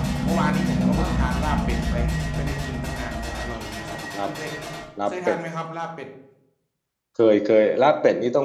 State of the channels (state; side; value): identical; both; correlation 1.00